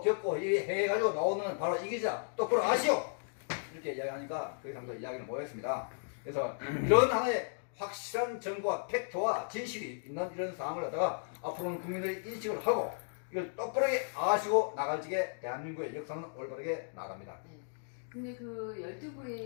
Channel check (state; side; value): silent; right; digital silence